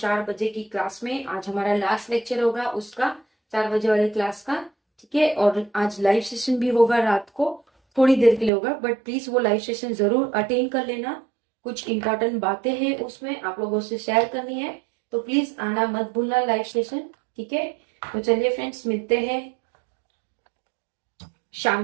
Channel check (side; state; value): left; drops out; at 8.5 s